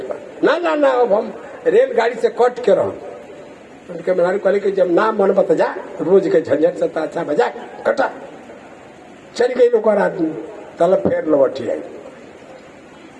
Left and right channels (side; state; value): both; identical; correlation 1.00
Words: पर ना ना ना, अब हम रेलगाड़ी से कट के रहो। उनके मेहरारू कहले कि जब ना मन बता जा, रोज के झंझट से अच्छा बजा कटा। चल गई लोग आदमी, तल फेर लौटी आई,